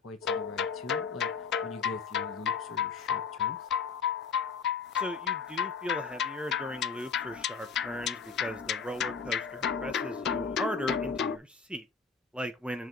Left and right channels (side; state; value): right; quieter; 5.7 dB